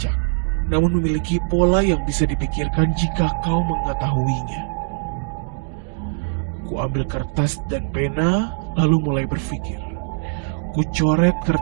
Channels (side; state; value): left; silent; 65 dB below the other